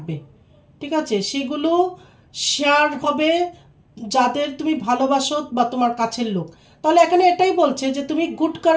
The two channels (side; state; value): both; identical; correlation 1.00